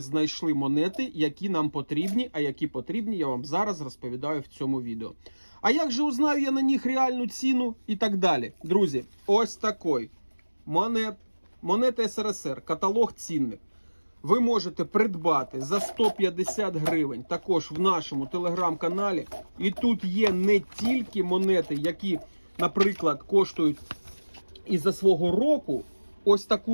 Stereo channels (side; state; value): both; inverted; correlation -1.00